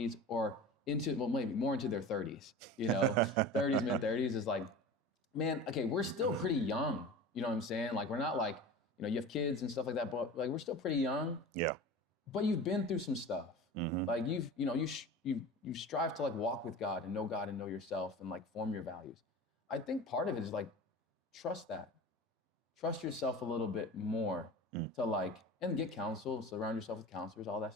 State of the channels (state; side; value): normal; both; correlation 0.34